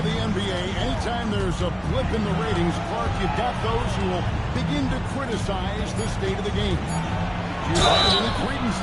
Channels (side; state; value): both; identical; correlation 1.00